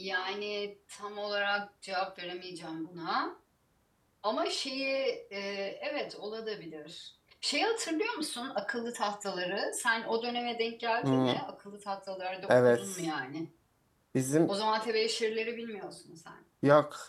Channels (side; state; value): both; identical; correlation 1.00